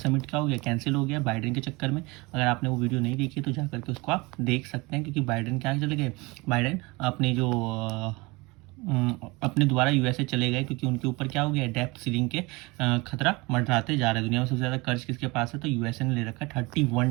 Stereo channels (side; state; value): left; quieter; 24.8 dB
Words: क्या हो गया, कैंसिल हो गया बाइडेन के चक्कर में। अगर आपने वो वीडियो नहीं देखी तो जा करके उसको आप देख सकते हैं, क्योंकि बाइडेन क्या चले गए, बाइडेन अपने जो अपने द्वारा यूएसए चले गए, क्योंकि उनके ऊपर क्या हो गया, डेप्थ सीलिंग के खतरा मंडराते जा रहे हैं। दुनिया में सबसे ज़्यादा कर्ज किसके पास है, तो यूएसए ने ले रखा है